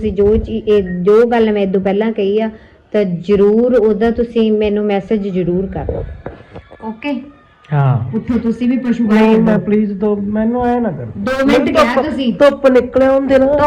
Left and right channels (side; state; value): both; identical; correlation 1.00